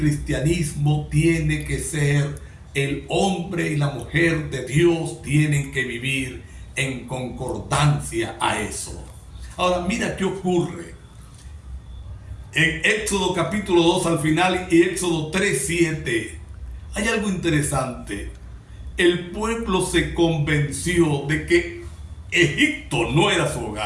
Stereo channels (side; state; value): both; identical; correlation 1.00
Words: tiene que ser, el hombre y la mujer de Dios tienen que vivir en concordancia a eso. Ahora mira qué ocurre. En Éxodo capítulo 2 al final y Éxodo 3:7 hay algo interesante. El pueblo se convenció de que Egipto no era su